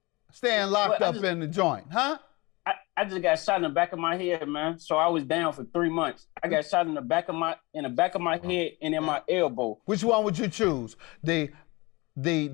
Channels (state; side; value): quieter; right; 24.2 dB